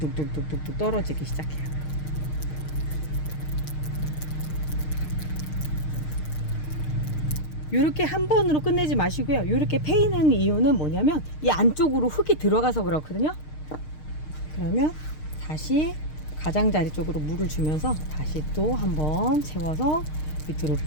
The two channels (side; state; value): right; late; 6.5 ms